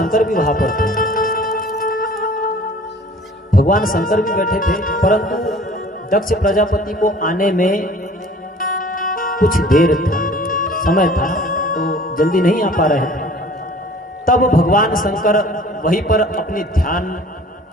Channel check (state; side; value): normal; both; correlation 0.49